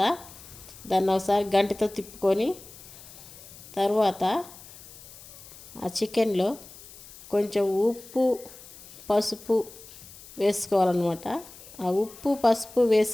దాన్ని ఒకసారి గంటతో తిప్పుకొని తర్వాత ఆ చికెన్లో కొంచెం ఉప్పు పసుపు వేసుకోవాలన్నమాట. ఆ ఉప్పు పసుపు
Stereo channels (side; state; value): left; noise; hiss, 18 dB below the sound